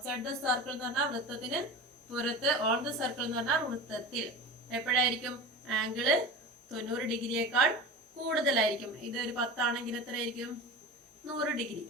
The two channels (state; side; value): normal; both; correlation 0.31